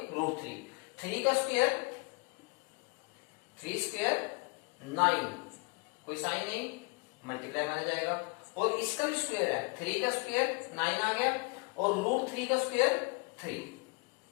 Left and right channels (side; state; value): right; quieter; 32.8 dB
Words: √3। 3 का स्क्वायर 3 स्क्वायर 9, कोई साइन नहीं, मल्टीप्लाई माना जाएगा। और इसका भी स्क्वायर है, 3 का स्क्वायर 9 आ गया और √3 का स्क्वायर 3